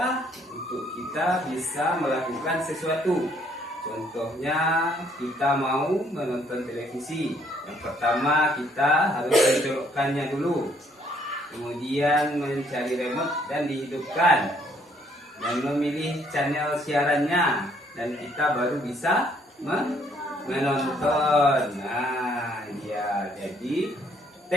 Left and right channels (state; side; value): normal; both; correlation 0.66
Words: untuk kita bisa melakukan sesuatu. Contohnya kita mau menonton televisi. Yang pertama kita harus mencolokkannya dulu. Kemudian mencari remote dan dihidupkan. Dan memilih channel siarannya. Dan kita baru bisa menonton. Nah, ya, jadi